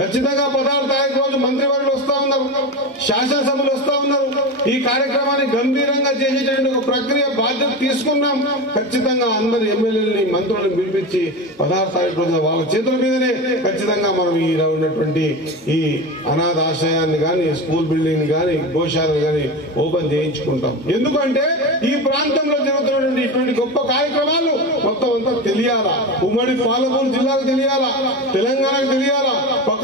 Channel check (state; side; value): normal; both; correlation 0.23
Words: 16 తారీఖు రోజు మంత్రివర్యులు వస్తా ఉన్నారు, శాసనసభలు వస్తా ఉన్నారు. ఈ కార్యక్రమాన్ని గంభీరంగా చేసేటువంటి ఒక ప్రక్రియ బాధ్యత తీసుకున్నాం. ఖచ్చితంగా అందరు ఎమ్మెల్యేలని మంత్రులను పిలిపించి 16 తారీఖు రోజున వాళ్ళ చేతుల మీదనే ఖచ్చితంగా మనం ఈ ఉన్నటువంటి ఈ అనాథ ఆశ్రయాన్ని గాని, స్కూల్ బిల్డింగ్ గాని, గోశాలను గాని ఓపెన్ చేయించుకుంటాం. ఎందుకంటే ఈ ప్రాంతంలో జరుగుతున్నటువంటి ఇటువంటి గొప్ప కార్యక్రమాలు మొత్తం అంతా తెలియాలా, ఉమ్మడి పాలమూరు జిల్లాకు తెలియాలా, తెలంగాణకు తెలియాలా,